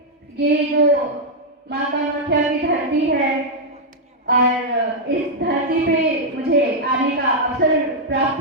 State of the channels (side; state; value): both; normal; correlation -0.04